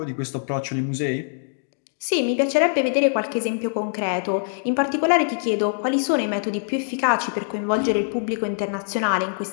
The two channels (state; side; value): silent; right; digital silence